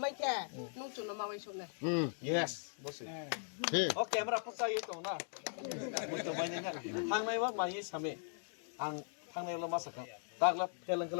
মাইকে নু চুনো মাওই শুনে yes বসে he ও ক্যামেরা ফসাই তো না মইতো বাইনে না থাংনাইবা মাই সামে आं थांनायावला मासाखा दागला फेलंग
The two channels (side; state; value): right; silent; digital silence